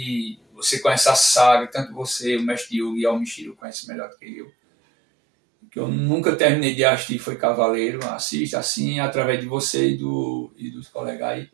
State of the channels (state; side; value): drops out; left; at 3.6 s